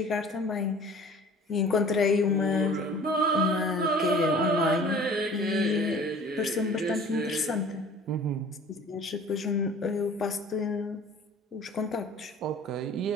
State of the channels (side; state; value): both; normal; correlation 0.47